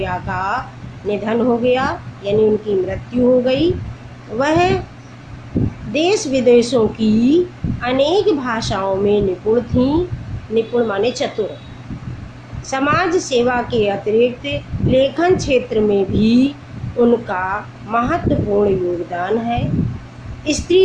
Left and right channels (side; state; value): both; identical; correlation 1.00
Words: का निधन हो गया यानी उनकी मृत्यु हो गई। वह देश विदेशों की अनेक भाषाओं में निपुण थीं। निपुण माने चतुर। समाज सेवा के अतिरिक्त लेखन क्षेत्र में भी उनका महत्वपूर्ण योगदान है।